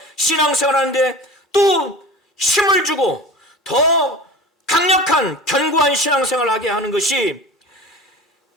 신앙생활하는데 또 힘을 주고 더 강력한 견고한 신앙생활을 하게 하는 것이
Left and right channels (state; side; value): normal; both; correlation 0.36